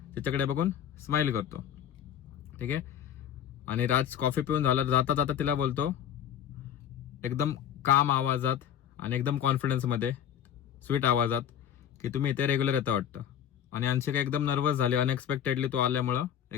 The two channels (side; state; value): right; quieter; 9.8 dB